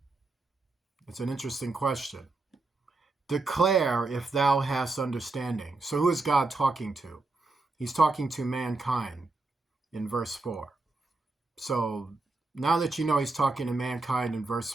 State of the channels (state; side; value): quieter; left; 3.4 dB